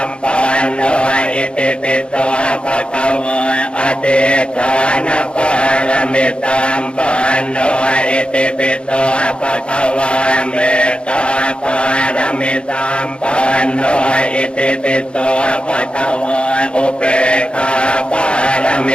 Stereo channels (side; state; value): right; late; 0.056 ms